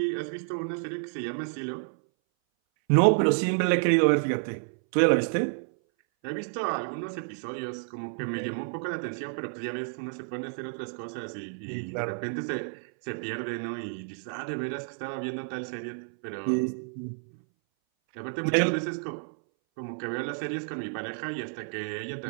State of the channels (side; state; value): left; silent; 58 dB below the other